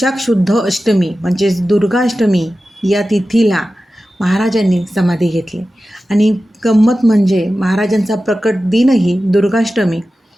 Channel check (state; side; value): normal; both; correlation 0.94